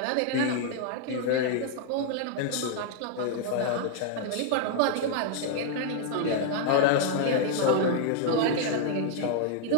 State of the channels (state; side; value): different; both; correlation 0.00